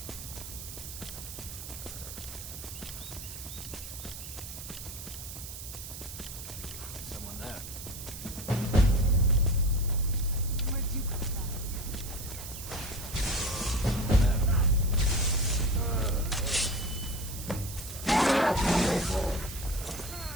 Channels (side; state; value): right; noise; hiss, 10 dB below the sound